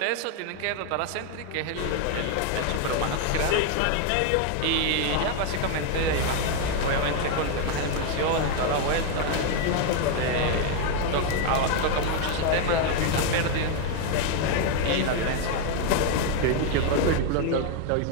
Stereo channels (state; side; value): different; both; correlation 0.01